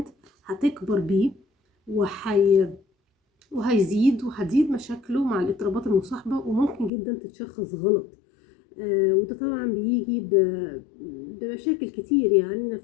هتكبر بيه وهيزيد وهتزيد مشاكله مع الاضطرابات المصاحبة، وممكن جدا تتشخص غلط. وده طبعا بيجي بمشاكل كتير يعني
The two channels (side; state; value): right; drops out; at 6.9 s